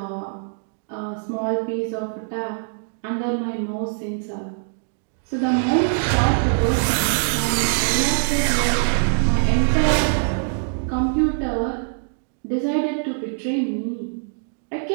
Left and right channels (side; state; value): left; silent; digital silence